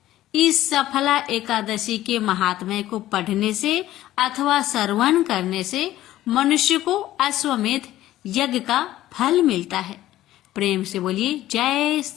इस सफला एकादशी के महात्म्य को पढ़ने से अथवा श्रवण करने से मनुष्य को अश्वमेध यज्ञ का फल मिलता है। प्रेम से बोलिए जय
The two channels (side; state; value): right; quieter; 14.4 dB